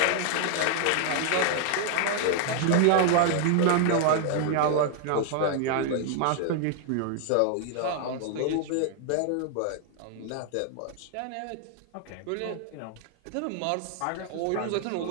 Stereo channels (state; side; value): different; both; correlation 0.00